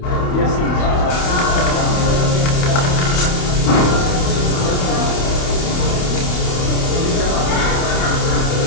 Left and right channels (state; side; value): late; right; 28 ms